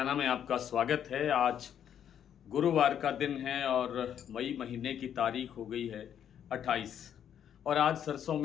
में आपका स्वागत है। आज गुरुवार का दिन है और मई महीने की तारीख हो गई है 28 और आज सरसों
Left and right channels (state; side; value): quieter; right; 9.3 dB